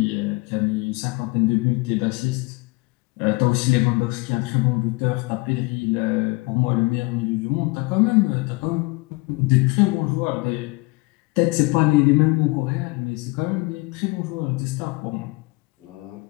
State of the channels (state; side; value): quieter; right; 25.0 dB